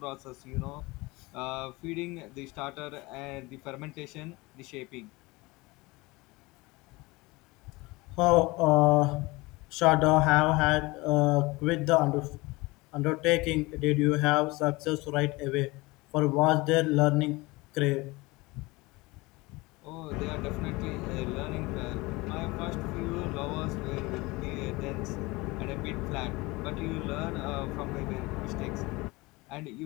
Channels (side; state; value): right; quieter; 23.0 dB